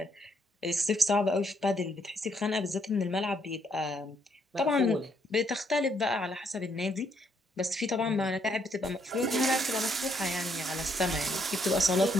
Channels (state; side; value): normal; both; correlation 0.72